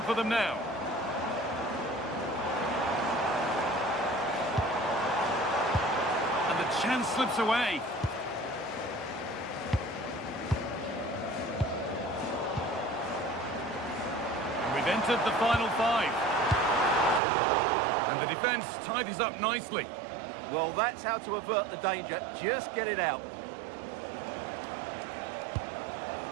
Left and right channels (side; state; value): left; drops out; at 17.2 s